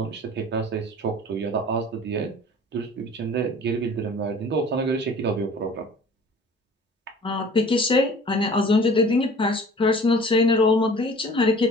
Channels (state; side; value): normal; both; correlation 0.47